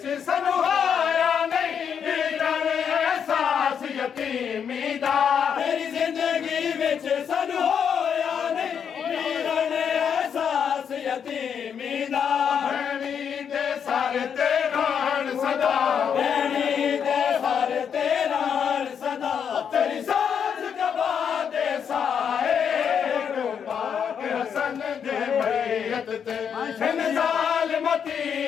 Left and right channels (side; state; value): right; quieter; 7.5 dB